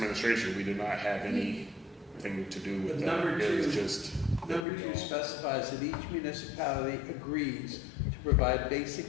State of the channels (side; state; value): right; drops out; at 4.7 s